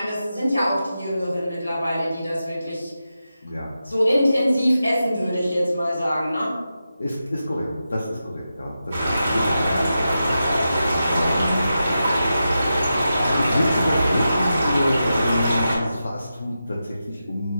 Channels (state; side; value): inverted; both; correlation -0.90